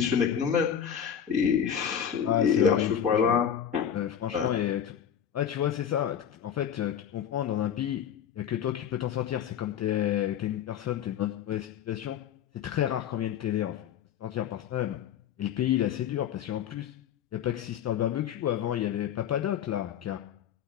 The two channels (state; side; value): quieter; right; 8.9 dB